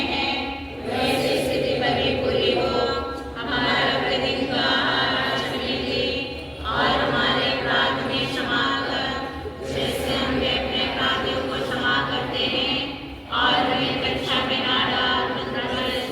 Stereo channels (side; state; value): both; identical; correlation 1.00